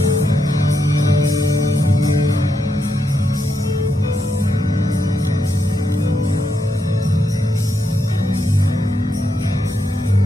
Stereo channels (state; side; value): normal; both; correlation 0.82